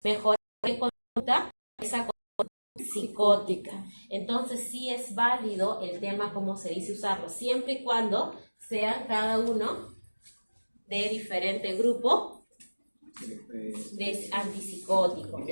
mejorar en conducta esa conducta psicótica. Entonces, sí es válido el tema, como se dice, usarlo, siempre y cuando sean cada uno de diferente grupo de antipsicóticos,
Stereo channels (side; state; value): both; inverted; correlation -1.00